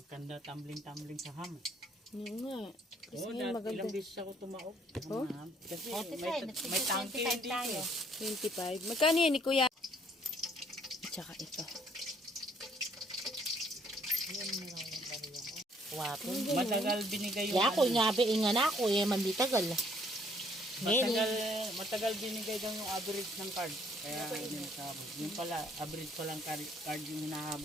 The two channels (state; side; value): normal; both; correlation 0.64